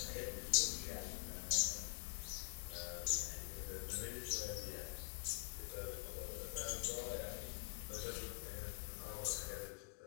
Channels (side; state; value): right; silent; digital silence